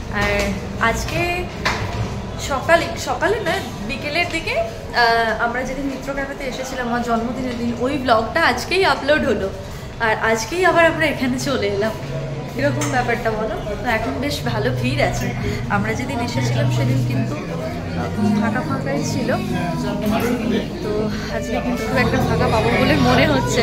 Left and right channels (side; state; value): both; identical; correlation 1.00